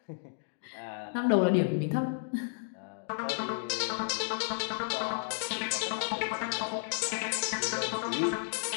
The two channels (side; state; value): right; silent; digital silence